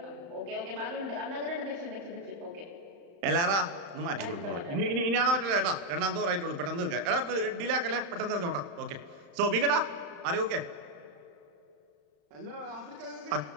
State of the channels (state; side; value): late; left; 34 ms